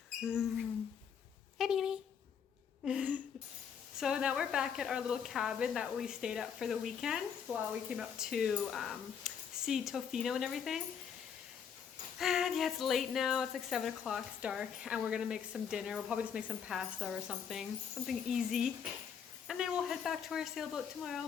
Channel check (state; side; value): quieter; right; 7.4 dB